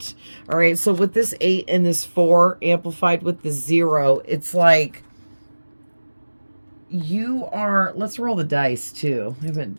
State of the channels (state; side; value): inverted; both; correlation -1.00